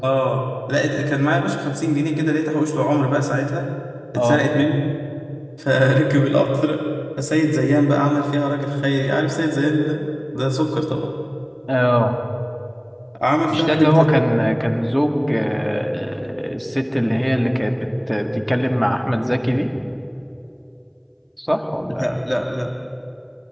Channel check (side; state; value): both; identical; correlation 1.00